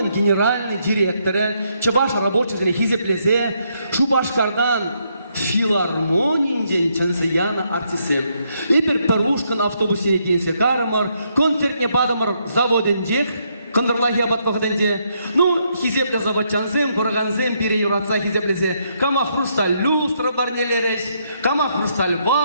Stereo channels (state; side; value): inverted; both; correlation -0.75